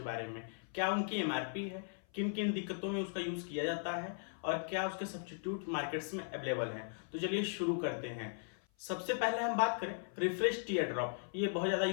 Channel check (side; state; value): right; silent; 52 dB below the other